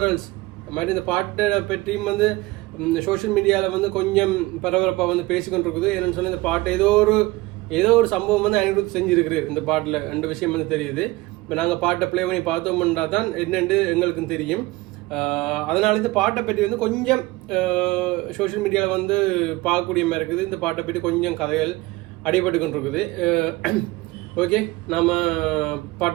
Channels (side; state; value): left; quieter; 20.5 dB